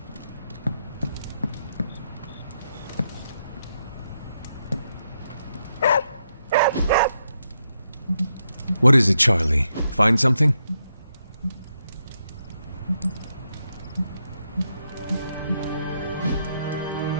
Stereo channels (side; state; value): both; inverted; correlation -0.81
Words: What is it, Charlie? Find something?